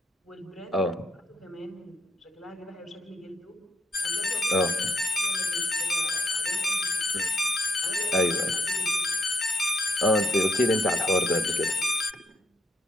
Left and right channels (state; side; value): normal; both; correlation 0.77